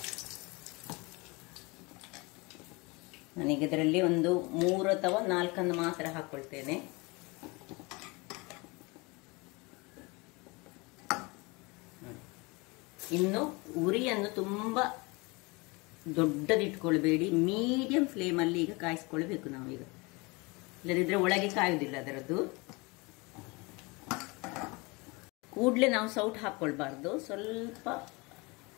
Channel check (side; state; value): right; quieter; 26.5 dB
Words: ನಾನೀಗ ಇದರಲ್ಲಿ ಒಂದು 3 ಅಥವಾ 4 ಮಾತ್ರ ಹಾಕ್ಕೊಳ್ತೇನೆ. ಇನ್ನು ಉರಿಯನ್ನು ತುಂಬ ದೊಡ್ಡದಿಟ್ಕೊಳ್ಬೇಡಿ, ಮೀಡಿಯಂ ಫ್ಲೇಮಲ್ಲಿ ಈಗ ಕಾಯಿಸ್ಕೊಳ್ಬೇಕು ನಾವೀಗ. ಇಲ್ಲದಿದ್ರೆ ಒಳಗೆ ಕಾಯುವುದಿಲ್ಲ ಅದರದ್ದು. ಕೂಡಲೇ ನಾವು ಸೌಟ್ ಹಾಕ್ಕೊಳ್ಬಾರ್ದು, ಸ್ವಲ್ಪ